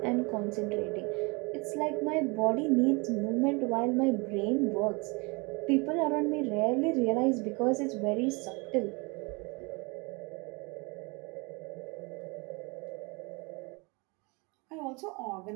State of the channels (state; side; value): quieter; left; 28.5 dB